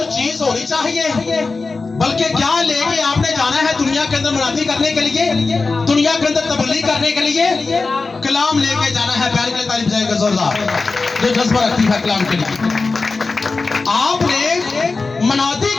चीज होनी चाहिए? बल्कि क्या लेके आपने जाना है दुनिया के अंदर मुनादी करने के लिए, दुनिया के अंदर तबलीग करने के लिए? कलाम लेके जाना है। प्यार के लिए तारीफ जाएगा जोरदार, जो जज्बा रखती है कलाम के लिए। आपने मुनादी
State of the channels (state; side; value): quieter; right; 4.0 dB